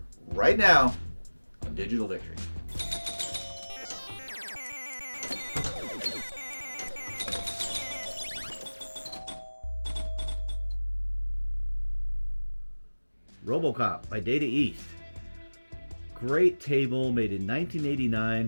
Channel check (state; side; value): inverted; both; correlation -1.00